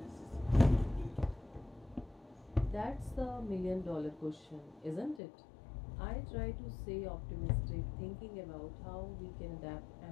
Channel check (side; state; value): right; drops out; at 5.2 s